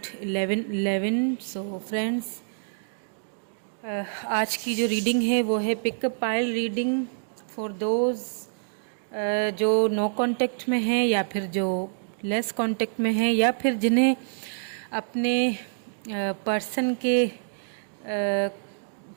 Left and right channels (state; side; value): silent; left; digital silence